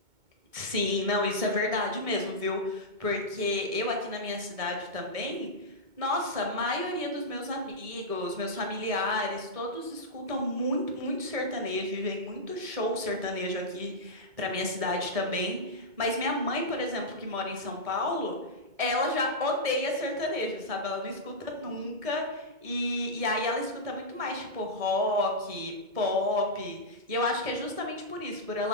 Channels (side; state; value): left; late; 2.2 ms